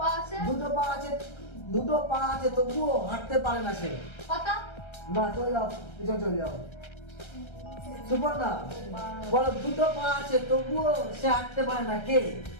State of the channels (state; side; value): late; right; 1.3 ms